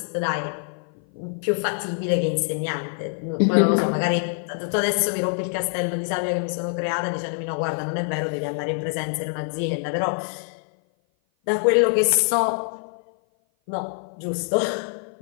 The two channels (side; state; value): right; silent; 56 dB below the other